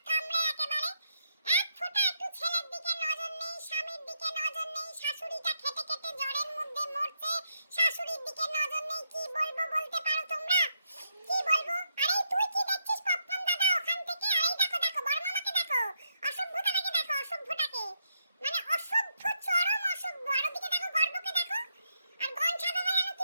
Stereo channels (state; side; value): inverted; both; correlation -0.79